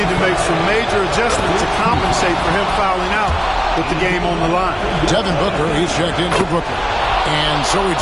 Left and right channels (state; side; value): identical; both; correlation 1.00